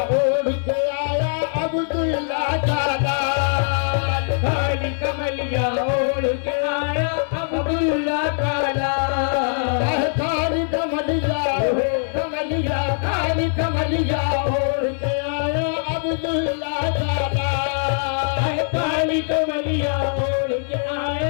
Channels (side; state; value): right; silent; 64 dB below the other